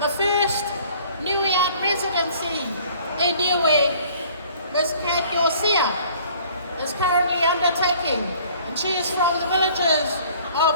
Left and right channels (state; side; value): inverted; both; correlation -0.54